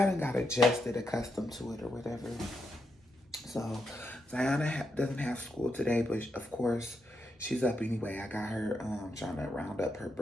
done got adjusted, accustomed to it or whatever. So Ziana doesn't have school today, but of course she's up anyway. I got her trying to round up her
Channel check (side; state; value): both; normal; correlation 0.83